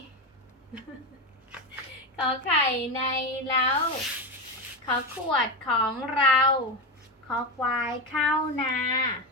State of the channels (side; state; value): both; normal; correlation 0.15